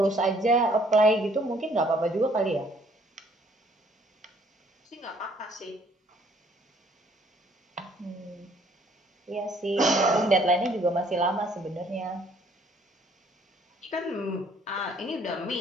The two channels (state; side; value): normal; both; correlation 0.62